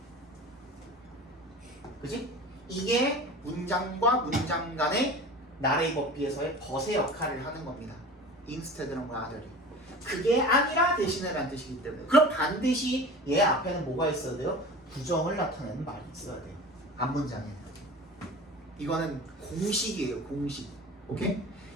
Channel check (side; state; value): both; normal; correlation 0.36